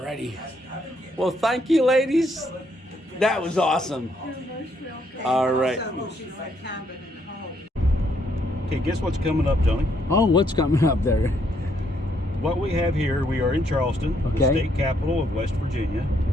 Well, thank you, ladies. That was awesome. All right. Okay, guess what's coming up, Tony? Oh, what's coming up there? What we have here, we are in Charleston, the Okay. state capital of West Virginia.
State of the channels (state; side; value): normal; both; correlation 0.72